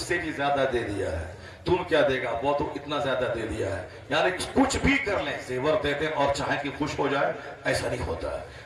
سے بھی زیادہ دے دیا ہے، تم کیا دے گا، وہ تو اتنا زیادہ دے دیا ہے۔ یعنی کچھ بھی کر لیں، زیور دے دیں اور چاہیں کہ خوش ہو جائے، ایسا نہیں ہوتا ہے۔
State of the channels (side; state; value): both; identical; correlation 1.00